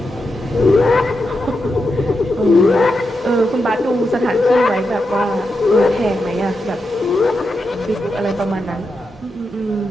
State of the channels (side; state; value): both; normal; correlation 0.87